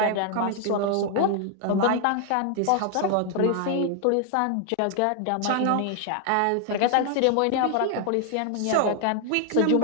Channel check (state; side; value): different; both; correlation 0.00